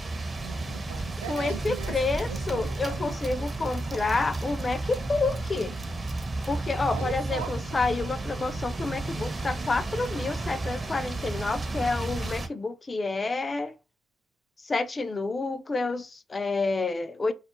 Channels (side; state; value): both; normal; correlation 0.87